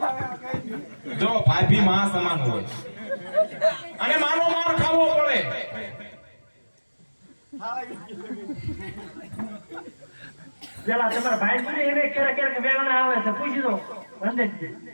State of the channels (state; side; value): inverted; both; correlation -1.00